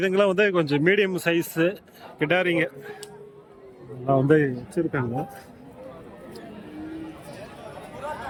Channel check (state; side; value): identical; both; correlation 1.00